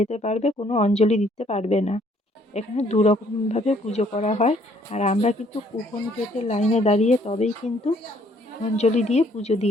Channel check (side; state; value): both; normal; correlation 0.64